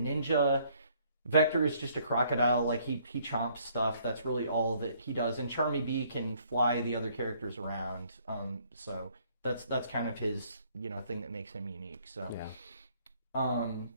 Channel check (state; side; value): inverted; both; correlation -0.64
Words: Vector is just a crocodile, like he chomps stuff. That's really all that he does. And Charmy Bee can fly the other characters around. So that's kind of his, you know, thing that makes him unique. So yeah.